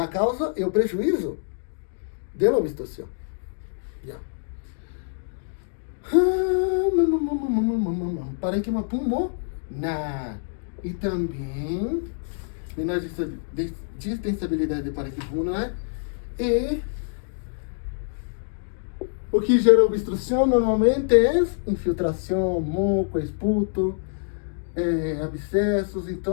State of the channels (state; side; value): silent; right; digital silence